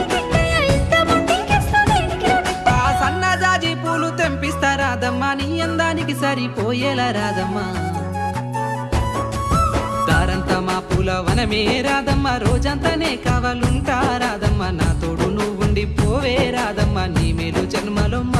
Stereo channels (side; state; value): both; identical; correlation 1.00